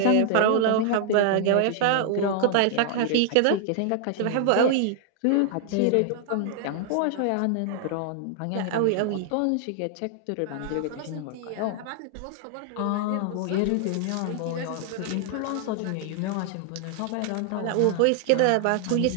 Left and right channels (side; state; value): both; different; correlation 0.00